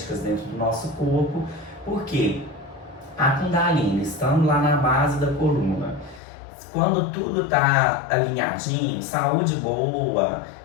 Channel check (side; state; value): right; drops out; at 6.2 s